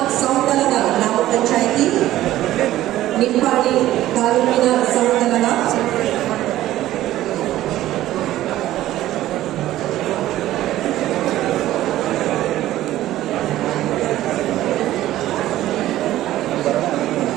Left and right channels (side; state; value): left; quieter; 14.4 dB